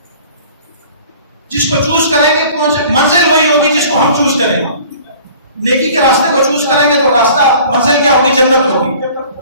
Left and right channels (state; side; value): inverted; both; correlation -0.48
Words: جس کو چوز کریں گے منزل وہی ہوگی جس کو ہم چوز کریں گے۔ نیکی کے راستے کو چوز کریں گے تو راستہ منزل کیا ہوگی؟ جنت ہوگی۔